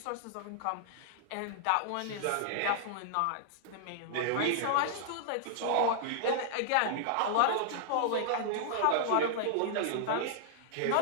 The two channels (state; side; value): different; both; correlation -0.01